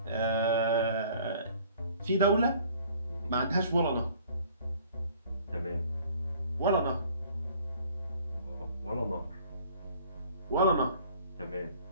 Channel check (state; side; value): inverted; both; correlation -0.54